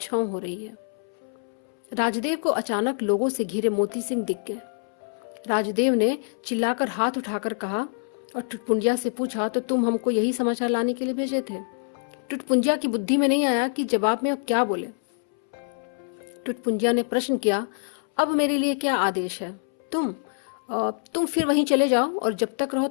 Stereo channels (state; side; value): silent; right; 61 dB below the other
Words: हो रही है। राजदेव को अचानक लोगों से घिरे मोती सिंह दिख गए। राजदेव ने चिल्लाकर हाथ उठाकर कहा और टुटपुंजिया से पूछा, तो तुम हमको यही समाचार लाने के लिए भेजे थे? टुटपुंजिया की बुद्धि में नहीं आया कि जवाब में अब क्या बोले। टुटपुंजिया ने प्रश्न किया, अब मेरे लिए क्या आदेश है? तुम फिर वहीं चले जाओ और जब तक रहो